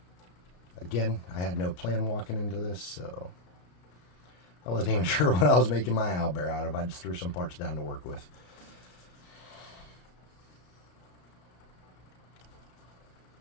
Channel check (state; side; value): late; right; 34 ms